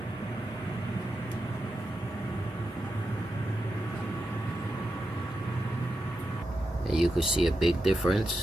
And you could see a big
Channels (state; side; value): normal; both; correlation 0.87